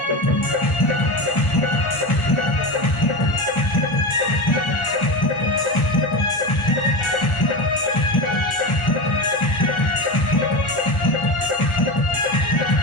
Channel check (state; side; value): late; right; 1.4 ms